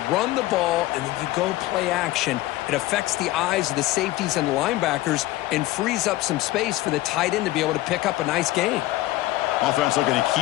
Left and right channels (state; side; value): quieter; right; 17.4 dB